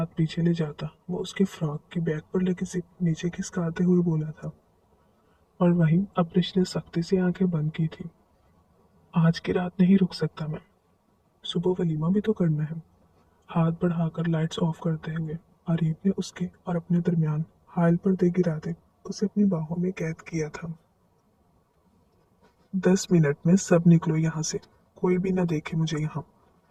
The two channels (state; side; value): identical; both; correlation 1.00